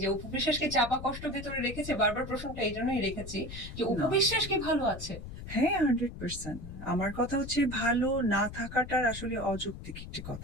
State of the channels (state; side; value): noise; left; rumble, 11 dB below the sound